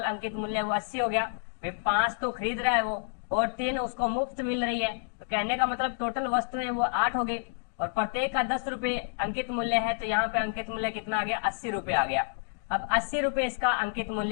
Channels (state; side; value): silent; right; digital silence